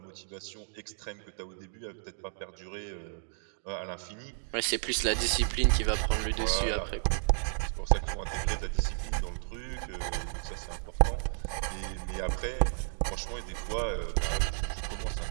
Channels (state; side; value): silent; left; digital silence